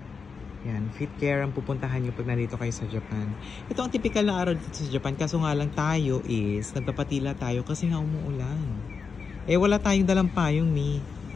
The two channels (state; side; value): quieter; right; 5.3 dB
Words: Yan, Fit Care ang pupuntahan nyo pag nandito kayo sa Japan. Ito ang typical na araw dito sa Japan. Kaso nga lang tayo is, nagpapatila tayo kasi nga umuulan. Wala tayong dalang payong ni.